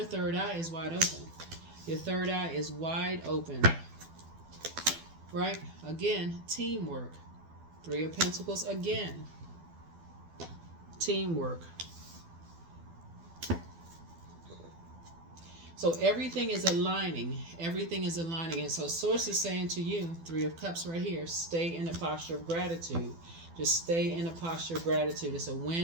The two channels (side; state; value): left; late; 12 ms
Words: third eye is wide open. Your third eye is wide open. Right? Again, teamwork. Three of Pentacles again. Teamwork. So everything is aligning. Everything is aligning. And so Source is saying to you, Three of Cups right here, stay in a posture of gratitude. Just stay in a posture of gratitude. It's a